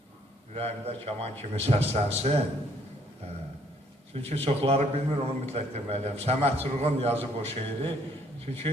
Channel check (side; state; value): both; normal; correlation 0.65